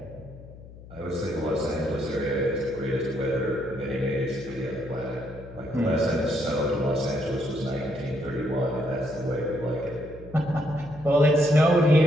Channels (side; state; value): left; noise; hum, 17 dB below the sound